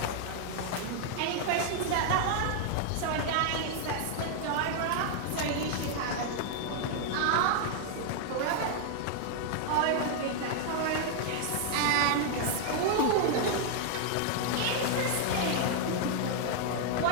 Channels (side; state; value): both; different; correlation 0.00